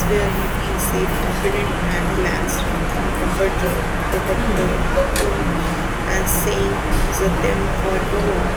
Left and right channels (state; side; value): identical; both; correlation 1.00